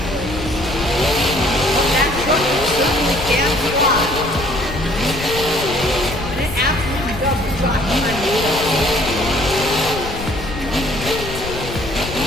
But that truck certainly can fly. And it absolutely does drop behind the wheel.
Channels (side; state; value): left; noise; rumble, 10 dB below the sound